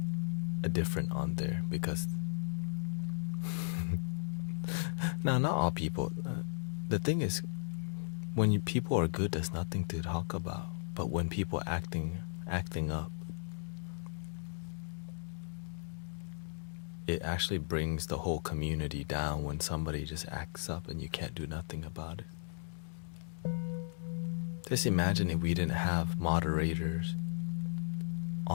different on there, because now, not all people. The thing is, when people are good, there's nothing to talk about. But when people acting up, it actually brings the whole community down when somebody just acts up and you can't do nothing about it. Just imagine if we didn't have moderators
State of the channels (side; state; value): right; silent; digital silence